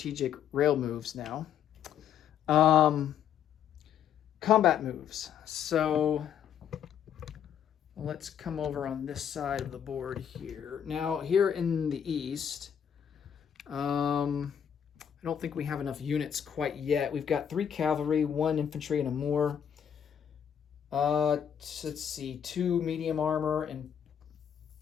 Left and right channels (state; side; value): quieter; right; 8.7 dB